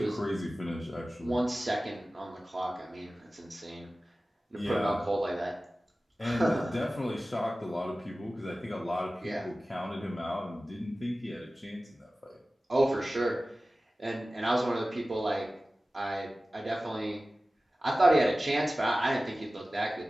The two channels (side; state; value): both; normal; correlation 0.96